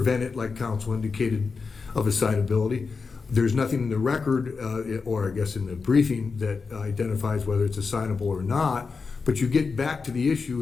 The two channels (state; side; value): quieter; right; 4.8 dB